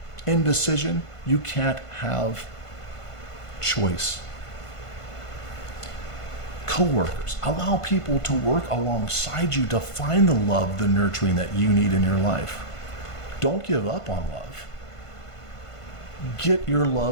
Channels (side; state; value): right; late; 1.5 ms